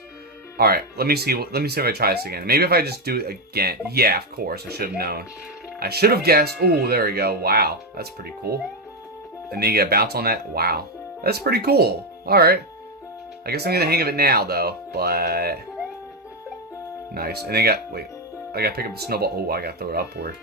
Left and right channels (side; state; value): both; normal; correlation 0.07